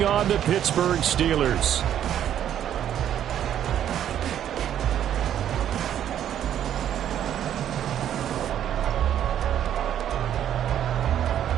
on the Pittsburgh Steelers.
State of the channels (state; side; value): quieter; left; 10.4 dB